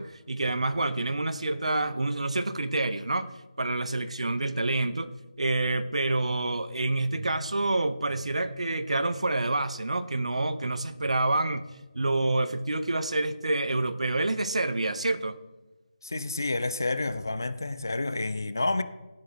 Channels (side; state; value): both; inverted; correlation -0.84